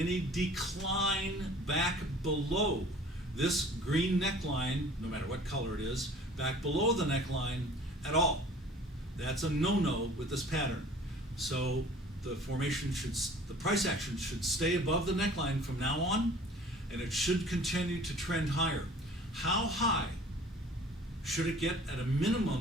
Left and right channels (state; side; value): normal; both; correlation 0.48